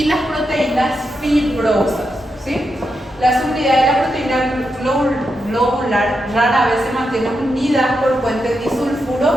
las proteínas fibrosas, ¿sí? Las unidades de la proteína globular rara vez se mantienen unidas por puentes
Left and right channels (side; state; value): both; normal; correlation 0.85